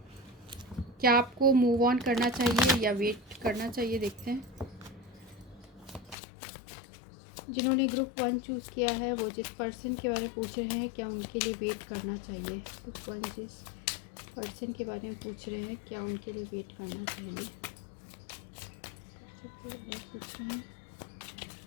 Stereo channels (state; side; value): drops out; right; at 6.2 s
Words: क्या आपको मूव ऑन करना चाहिए या वेट करना चाहिए, देखते हैं। जिन्होंने ग्रुप 1 चूज़ किया है वो जिस पर्सन के बारे में पूछ रहे हैं क्या उनके लिए वेट करना चाहिए। ग्रुप 1 जिस पर्सन के बारे में पूछ रहे हैं क्या उनके लिए वेट करना चाहिए, पूछ रहे हैं